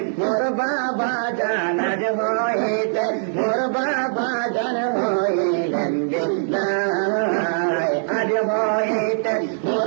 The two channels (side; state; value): left; silent; 64 dB below the other